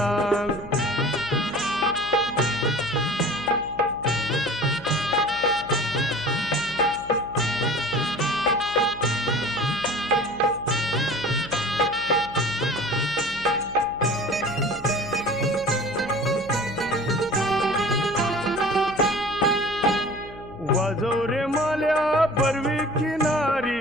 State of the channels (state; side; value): noise; left; hum, 17 dB below the sound